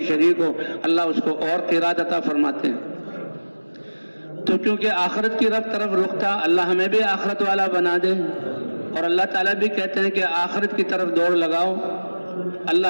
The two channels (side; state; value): both; inverted; correlation -1.00